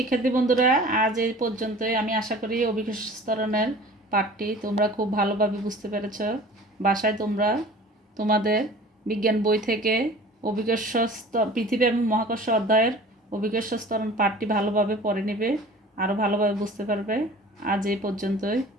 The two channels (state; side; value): normal; both; correlation 0.44